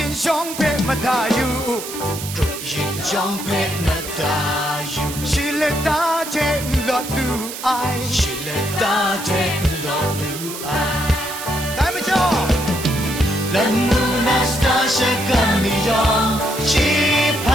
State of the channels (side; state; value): right; noise; hiss, 9 dB below the sound